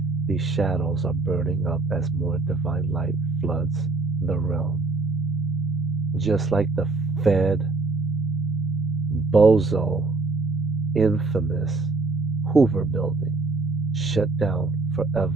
These shadows are burning up as more divine light floods the realm. Just like the Fed, bozo, infamous Hoover building shut down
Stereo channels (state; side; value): quieter; left; 3.6 dB